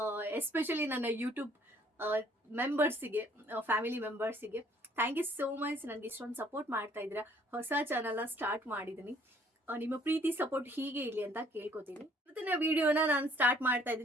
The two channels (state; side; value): normal; both; correlation 0.60